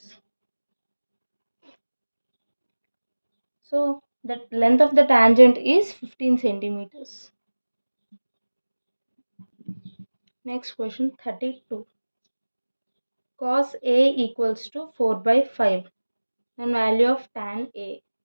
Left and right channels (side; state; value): both; inverted; correlation -1.00